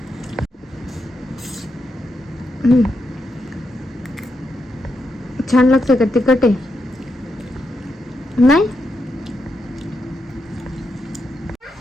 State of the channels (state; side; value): normal; both; correlation 0.84